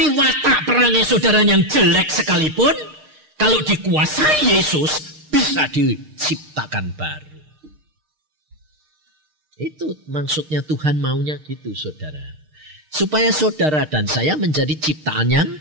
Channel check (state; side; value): late; left; 6.5 ms